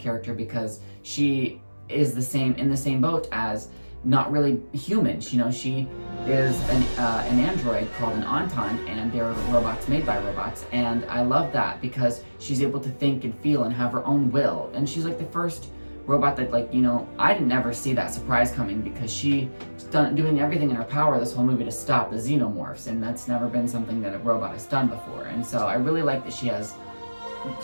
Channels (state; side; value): inverted; both; correlation -1.00